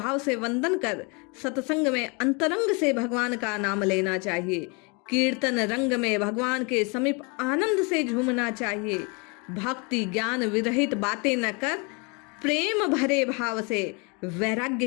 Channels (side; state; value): right; quieter; 31.4 dB